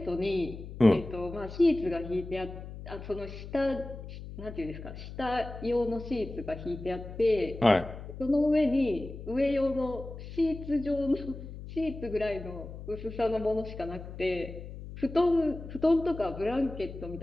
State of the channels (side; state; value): left; noise; hum, 11 dB below the sound